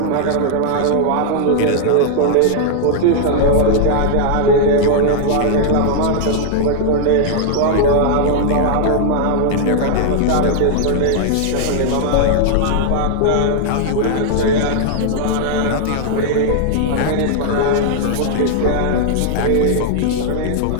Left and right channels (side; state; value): both; different; correlation 0.00